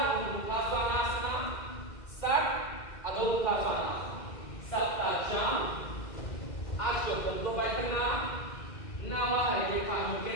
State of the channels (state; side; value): late; right; 2.0 ms